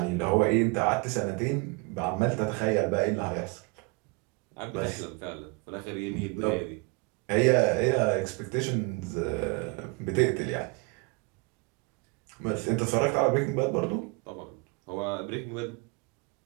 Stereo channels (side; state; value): left; quieter; 28.4 dB